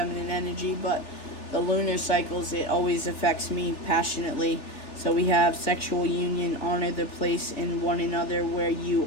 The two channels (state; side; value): late; right; 3.4 ms